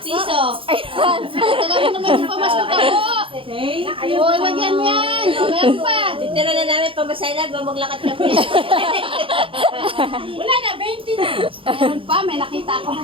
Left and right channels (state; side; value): late; left; 0.26 ms